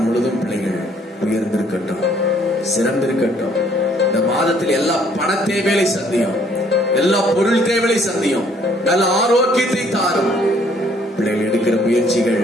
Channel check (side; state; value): both; normal; correlation 0.63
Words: முழுவதும் பிள்ளைகள் உயர்ந்திருக்கட்டும், சிறந்திருக்கட்டும். இந்த மாதத்தில் எல்லா பண தேவைகளை சந்தியும், எல்லா பொருள் தேவைகளை சந்தியும், நல்ல ஆரோக்கியத்தை தாரும். பிள்ளைகள் எடுக்கிற முயற்சிகள்,